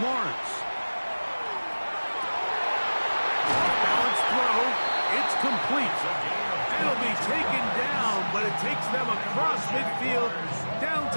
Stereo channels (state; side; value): inverted; both; correlation -1.00